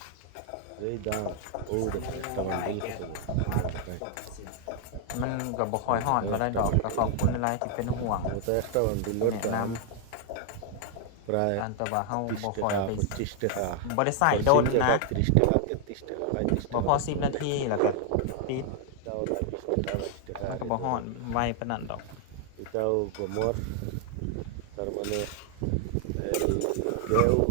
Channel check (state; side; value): different; both; correlation 0.00